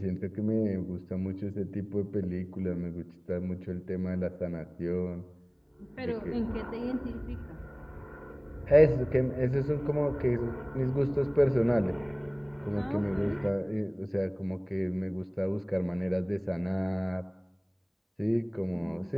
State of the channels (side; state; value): both; identical; correlation 1.00